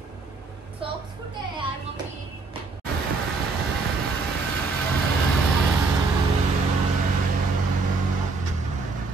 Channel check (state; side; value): quieter; left; 4.1 dB